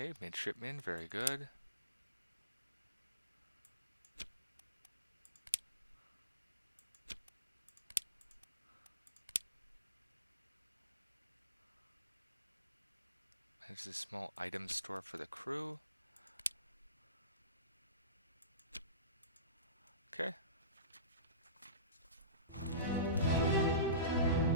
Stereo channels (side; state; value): both; inverted; correlation -0.34